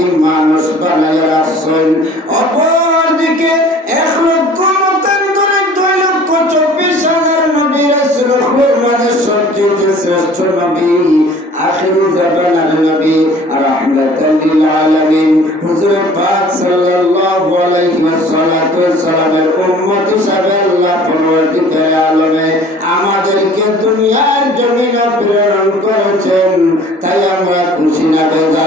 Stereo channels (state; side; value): normal; both; correlation 0.49